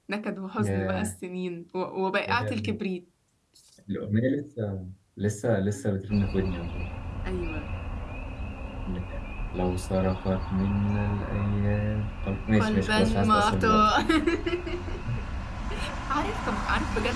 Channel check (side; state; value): both; identical; correlation 1.00